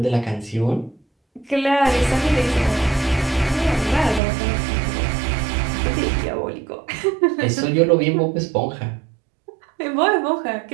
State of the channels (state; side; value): drops out; left; at 4.2 s